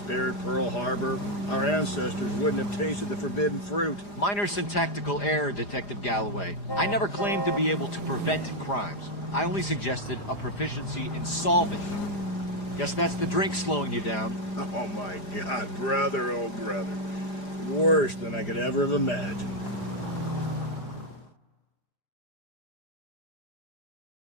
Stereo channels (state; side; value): late; right; 4.9 ms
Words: Pearl Harbor, our ancestors wouldn't have tasted the forbidden fruit. Minor syntactical error, Detective Galloway. I never claimed to be able to prevent crimes. I only suggested a proficiency in solving them. Guess that's the drink slowing you down. Oh my God, brother, oh brother. Worse than I could ever have imagined.